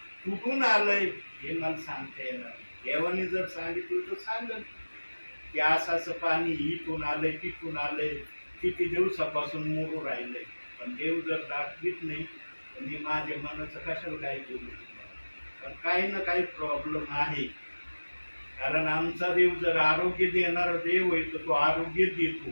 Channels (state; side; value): inverted; both; correlation -1.00